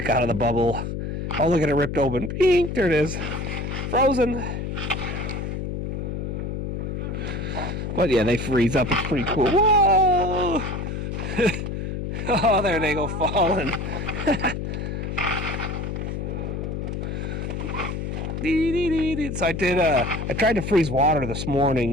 out of the bubble. Oh, look at it ripped open. Bing, there it is. Frozen. But yeah, they freeze up. It's pretty cool. Whoa! Oh, there they go falling. So I tried to freeze water this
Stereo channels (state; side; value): noise; left; hum, 4 dB below the sound